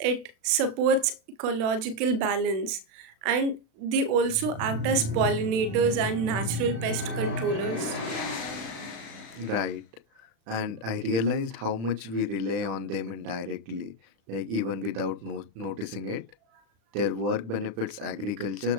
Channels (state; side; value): late; left; 36 ms